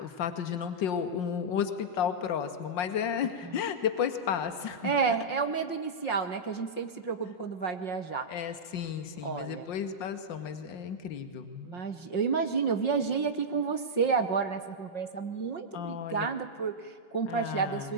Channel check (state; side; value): late; right; 5.6 ms